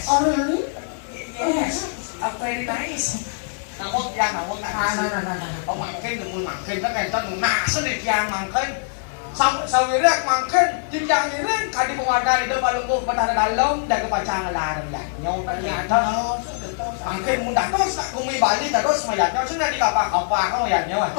Oh really? Yes. Very nice. Namun yang namun Ông mangkin đừng mangkin nó cái tên nã số này yang mangkin. Sau ini mangkin jenjang ini kadi pemadaan itu balungku pada dalam dan kepacangan larang ya. Nyau ternyata mangkin mudah terus tak kumi Bali terus mayatnya sudah di kapal kamu ya nyau.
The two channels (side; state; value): right; silent; digital silence